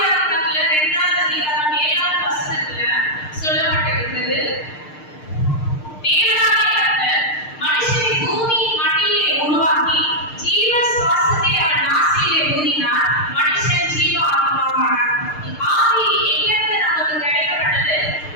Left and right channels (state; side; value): late; right; 6.6 ms